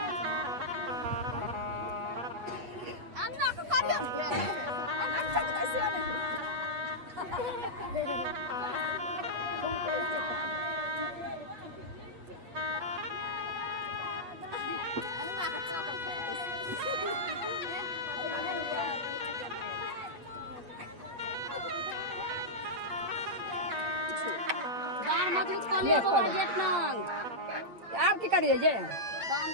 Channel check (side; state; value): left; late; 8.3 ms